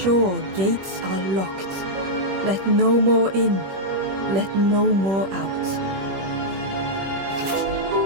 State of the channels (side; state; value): left; late; 21 ms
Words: gates are locked. Let no more in. Let no more out."